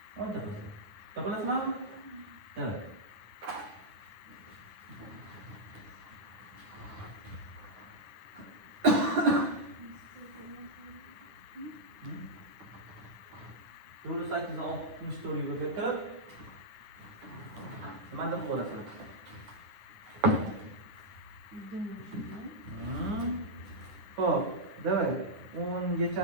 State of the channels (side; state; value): left; late; 9.4 ms